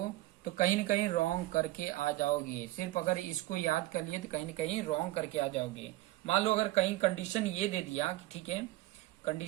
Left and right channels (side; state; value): left; quieter; 17.6 dB